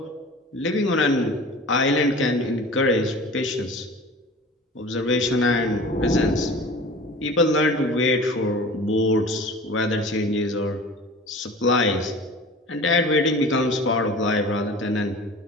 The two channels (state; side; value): normal; both; correlation 0.40